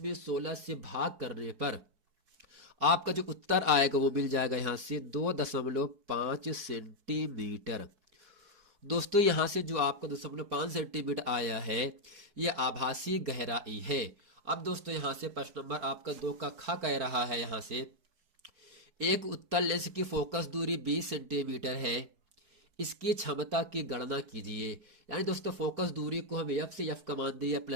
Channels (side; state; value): left; late; 4.6 ms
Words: 16 से भाग करने पर आपका जो उत्तर आएगा वो मिल जाएगा यहां से 2.5 सेंटीमीटर। दोस्तों यहां से जो आपका 2.5 सेंटीमीटर आया है यह आभासी गहराई है। अब दोस्तों यहां से प्रश्न नंबर आपका 2 का ख कह रहा है, यहां से एक उत्तल लेंस की फोकस दूरी 20 सेंटीमीटर है, इसकी क्षमता की गणना कीजिए। यानी दोस्तों फोकस दूरी को हमें f से f का मान दिया